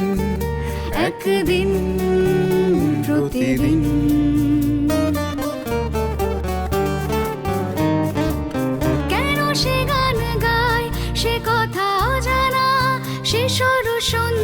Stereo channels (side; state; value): both; identical; correlation 1.00